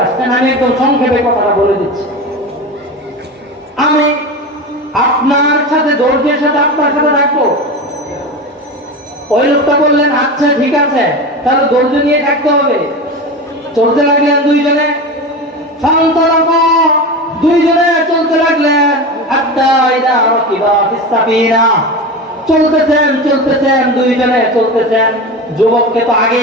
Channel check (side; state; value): both; normal; correlation 0.26